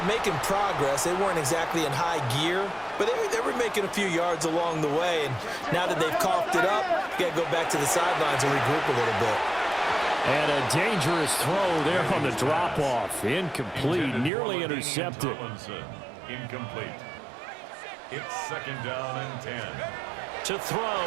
making progress. They weren't exactly in high gear, but they were making a few yards along the way. And now that they've coughed it up, you got to go back to the sidelines and regroup a little bit. And a dangerous throw there on the drop-off. Incomplete, nearly intercepted. Incomplete. It's second down and 10. To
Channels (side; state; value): left; drops out; at 14.3 s